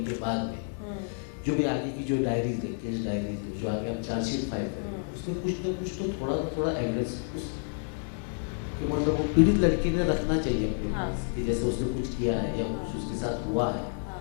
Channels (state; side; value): silent; right; 58 dB below the other